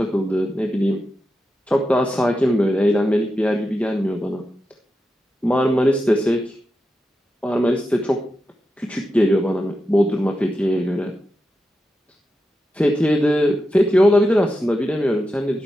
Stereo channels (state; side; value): normal; both; correlation 0.89